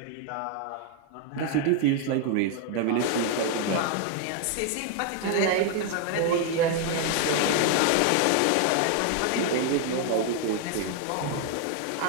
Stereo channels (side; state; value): both; different; correlation 0.01